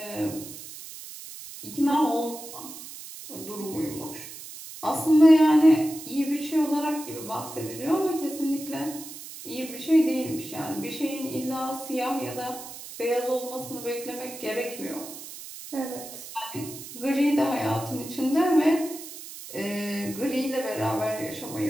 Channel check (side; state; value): right; noise; hiss, 13 dB below the sound